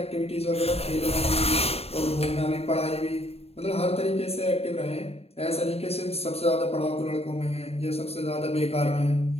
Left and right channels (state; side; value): late; right; 0.29 ms